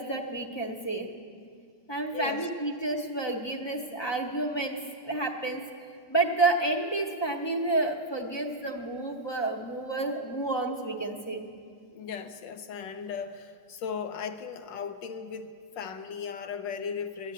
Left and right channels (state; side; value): late; right; 1.2 ms